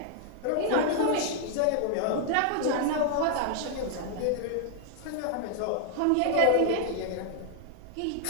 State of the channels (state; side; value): different; both; correlation 0.00